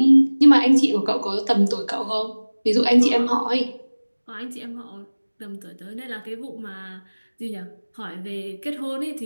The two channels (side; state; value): both; inverted; correlation -1.00